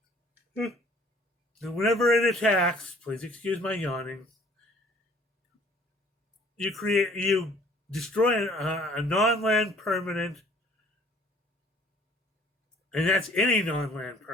and whenever it attacks, please excuse my yawning, you destroy a non-land permanent, and that's any non-land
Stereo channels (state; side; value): normal; both; correlation 0.56